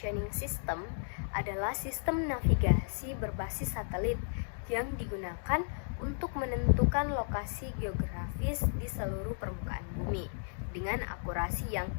System adalah sistem navigasi berbasis satelit yang digunakan untuk menentukan lokasi geografis di seluruh permukaan bumi dengan akurasi yang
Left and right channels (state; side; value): silent; right; digital silence